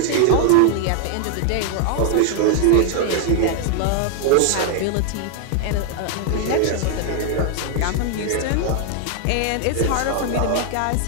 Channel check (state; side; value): different; both; correlation 0.00